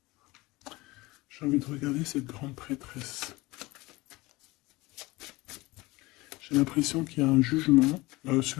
J'ai envie de regarder cette grande prêtresse. J'ai l'impression qu'il y a un jugement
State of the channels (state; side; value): quieter; right; 21.5 dB